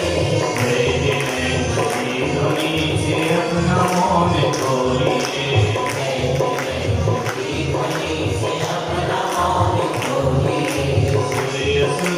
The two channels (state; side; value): identical; both; correlation 1.00